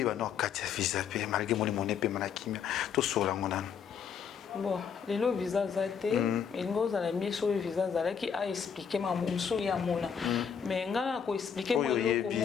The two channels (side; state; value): right; quieter; 7.2 dB